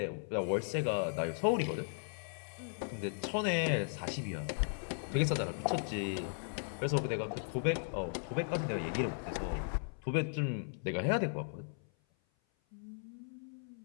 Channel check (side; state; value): right; silent; 53 dB below the other